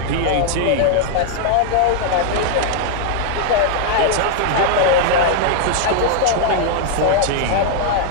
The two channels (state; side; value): different; both; correlation 0.00